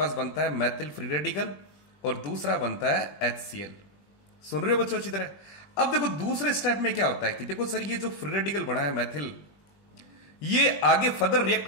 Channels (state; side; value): late; right; 20 ms